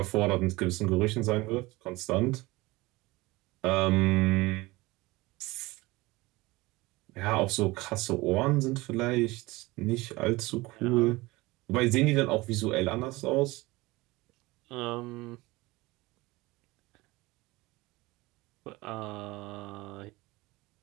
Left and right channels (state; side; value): quieter; left; 21.3 dB